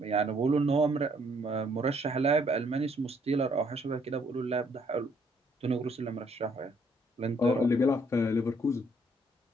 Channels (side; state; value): both; normal; correlation 0.67